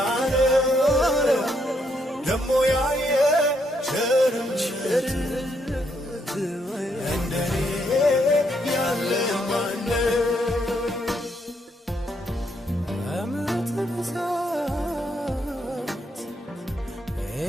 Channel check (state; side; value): normal; both; correlation 0.75